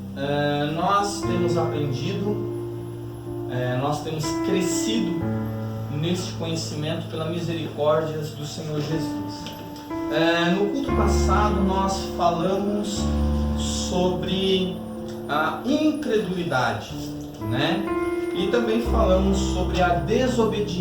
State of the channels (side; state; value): both; identical; correlation 1.00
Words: Nós temos aprendido, nós temos crescido neste conhecimento pela misericórdia do Senhor Jesus. No culto passado nós falamos sobre a incredulidade, né? E também falamos sobre a